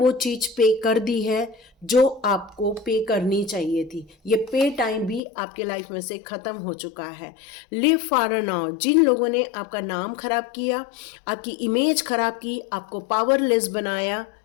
चीज़ पे कर दी है जो आपको पे करनी चाहिए थी। ये पे टाइम भी आपके लाइफ में से ख़त्म हो चुका है। Live for now. जिन लोगों ने आपका नाम खराब किया, आपकी इमेज खराब की, आपको पावरलेस बनाया,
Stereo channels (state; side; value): drops out; right; at 5.2 s